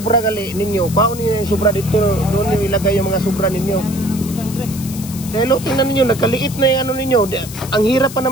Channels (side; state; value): left; noise; hiss, 13 dB below the sound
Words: gali ninyo, paano niyo yung sobra dito, doon niyo ilagay yung mga sobra ninyo. Dahil tingnan ninyo, nagkaliit na yung ano ninyo. Ang hirap pa